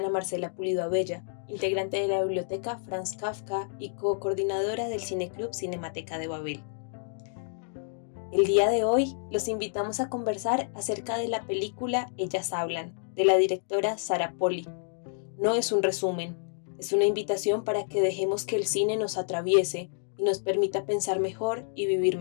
Marcela Pulido Abella, integrante de la biblioteca Franz Kafka y co-coordinadora del Cineclub Cinemateca de Babel. El día de hoy los invitamos a conversar acerca de la película Ellas Hablan, de la directora Sarah Polley. No es un resumen, es una invitación para que dejemos que el cine nos atraviese y nos permita pensar mejor y vivir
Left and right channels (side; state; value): right; silent; digital silence